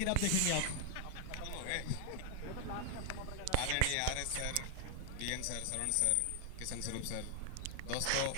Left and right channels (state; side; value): different; both; correlation 0.00